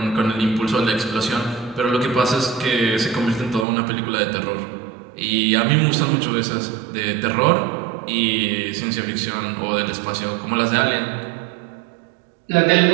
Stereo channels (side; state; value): left; drops out; at 3.7 s